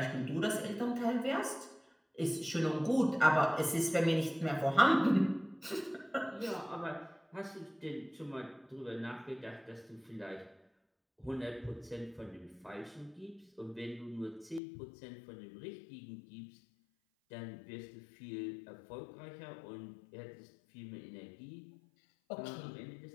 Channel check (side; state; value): right; drops out; at 14.6 s